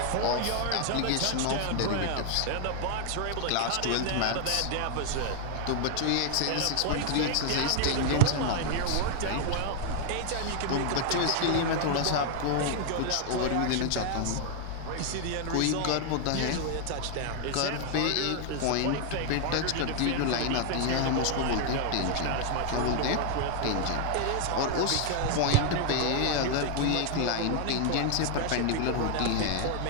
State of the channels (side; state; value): both; different; correlation 0.00